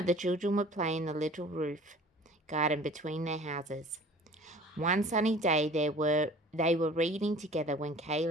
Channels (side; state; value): both; normal; correlation 0.46